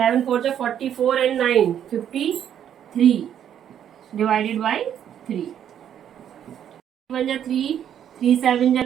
4 जा 44 एंड 9 53 डिवाइडेड बाई 3, 1 जा 3, 3 7 जा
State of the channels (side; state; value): left; quieter; 9.7 dB